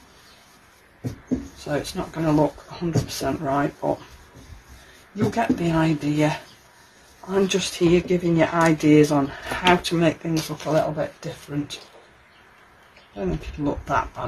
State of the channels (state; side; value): identical; both; correlation 1.00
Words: so it's not going to look 100% right, but you'll get the idea. I'm just here giving you ideas on how to make things look a little bit different. I don't think it'll look that